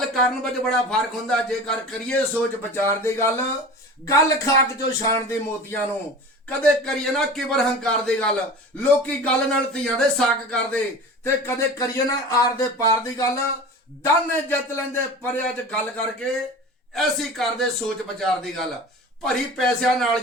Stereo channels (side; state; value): both; normal; correlation 0.36